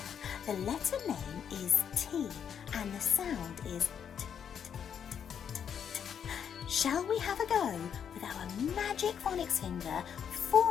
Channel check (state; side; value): quieter; right; 8.0 dB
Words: the letter name is T and the sound is t, t, t, t, t. Shall we have a go with our magic phonics finger